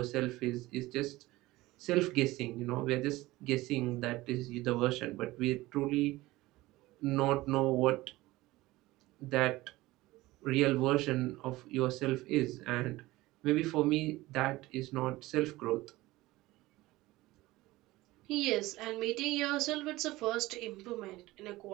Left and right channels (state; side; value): quieter; left; 18.8 dB